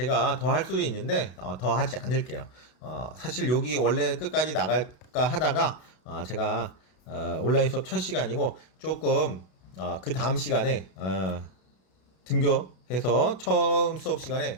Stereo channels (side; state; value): right; late; 32 ms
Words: 더 할 수도 있는데 더 하지 않을게요. 사실 여기 원래 끝까지 나갈까 하다가 제가 온라인 수업 첫 시간이고 조금 그 다음 시간에 등교해서 처음 수업 시간에